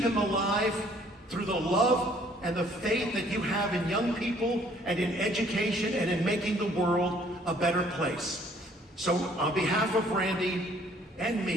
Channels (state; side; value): normal; both; correlation 0.60